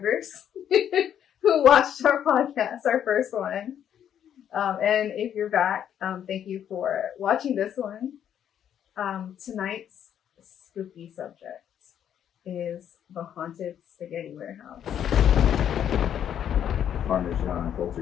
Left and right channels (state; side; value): quieter; right; 9.6 dB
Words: who watched our podcast, our first one. And if you're back, thank you for watching this one. Tonight's spooky subject is the haunted spaghetti warehouse. Parmesan